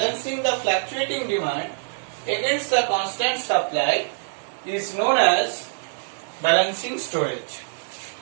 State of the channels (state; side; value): silent; left; digital silence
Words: the fluctuating demand against the constant supply is known as balancing storage.